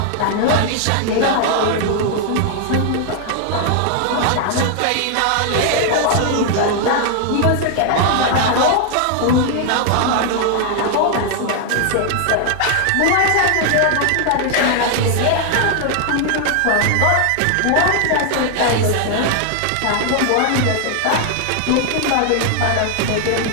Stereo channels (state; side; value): different; both; correlation 0.00